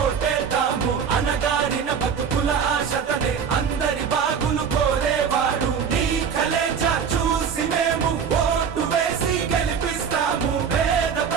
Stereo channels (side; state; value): left; quieter; 6.9 dB